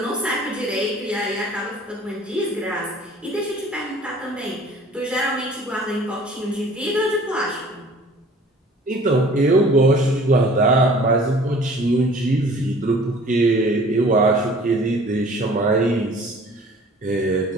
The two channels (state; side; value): normal; both; correlation 0.50